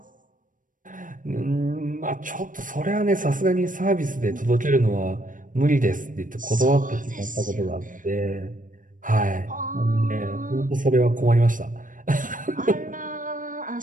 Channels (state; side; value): late; left; 0.38 ms